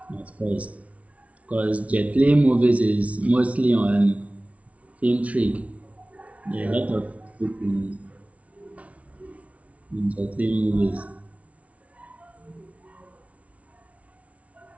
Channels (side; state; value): left; late; 0.066 ms